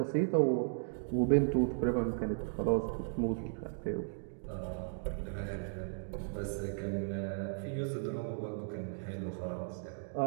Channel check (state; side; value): silent; left; digital silence